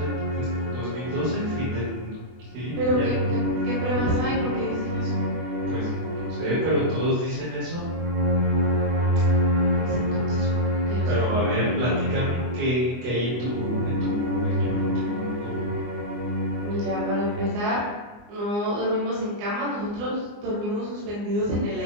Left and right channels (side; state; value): left; late; 24 ms